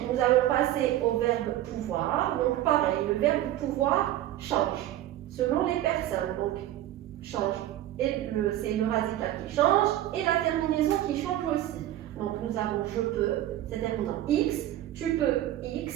nous allons passer au verbe pouvoir. Donc pareil, le verbe pouvoir change selon les personnes. Donc change. Et c'est le radical qui change et la terminaison qui change aussi. Donc nous avons je peux, c'est terminé en X, tu peux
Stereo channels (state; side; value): quieter; left; 13.5 dB